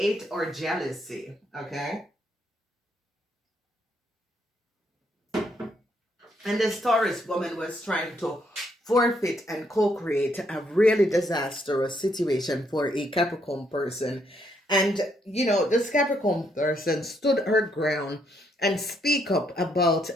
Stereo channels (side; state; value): both; normal; correlation 0.73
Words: or jealousy? Okay. And this Taurus woman was trying to forfeit and co-create a really disastrous situation for a Capricorn person. And, this Capricorn person stood her ground and speak up about